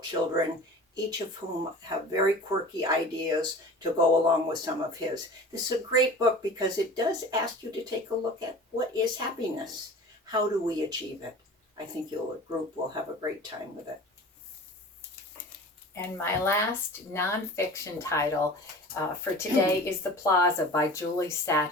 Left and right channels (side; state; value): both; normal; correlation 0.39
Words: children, each of whom have very quirky ideas to go along with some of his. This is a great book because it does ask you to take a look at what is happiness? How do we achieve it? I think the group will have a great time with it. And my last nonfiction title for today is The Plaza by Julie